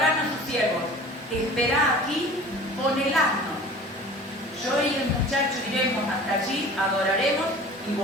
a sus siervos, esperá aquí con el asno. Yo y el muchacho iremos hasta allí, adoraremos y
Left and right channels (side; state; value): both; normal; correlation 0.42